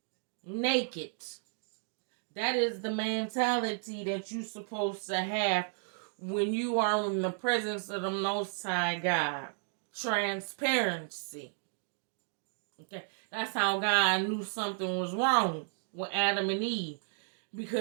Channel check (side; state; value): left; silent; 56 dB below the other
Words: naked. That is the mentality that you're supposed to have when you are in the presence of the Most High God. Transparency. Okay, that's how God knew something was wrong with Adam and Eve,